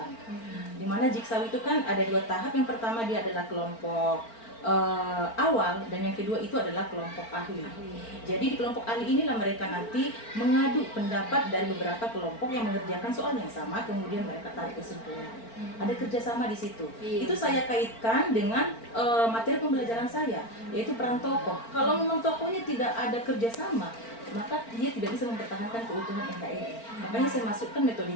Di mana jigsaw itu kan ada 2 tahap. Yang pertama dia adalah kelompok awal dan yang kedua itu adalah kelompok ahli. Jadi di kelompok ahli inilah mereka nanti mengadu pendapat dari beberapa kelompok yang mengerjakan soal yang sama, kemudian mereka tarik kesimpulan. Ada kerjasama di situ. Itu saya kaitkan dengan materi pembelajaran saya, yaitu peran tokoh. Kalau memang tokohnya tidak ada kerjasama, maka dia tidak bisa mempertahankan keutuhan NKRI. Makanya saya masukkan metode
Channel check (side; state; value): right; late; 4.4 ms